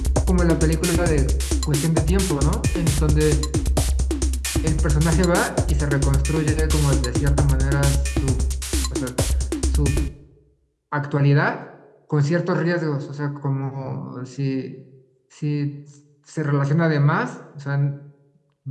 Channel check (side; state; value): both; identical; correlation 1.00